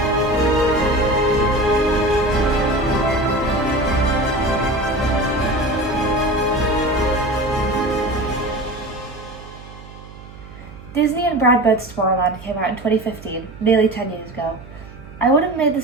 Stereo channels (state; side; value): noise; right; hum, 18 dB below the sound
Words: Disney and Brad Bird's Tomorrowland came out in 2015, nearly 10 years ago. I would have made